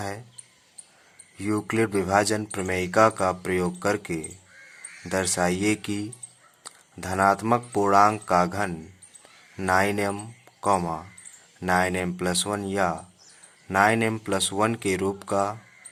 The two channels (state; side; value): identical; both; correlation 1.00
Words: यूक्लिड विभाजन प्रमेयिका का प्रयोग करके दर्शाइए कि धनात्मक पूर्णांक का घन 9m, 9m+1 या 9m+1 के रूप का